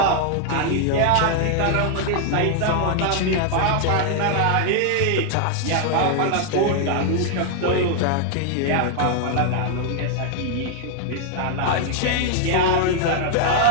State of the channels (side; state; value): both; different; correlation 0.00